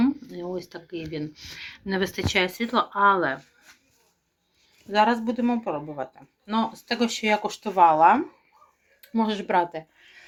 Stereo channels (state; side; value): identical; both; correlation 1.00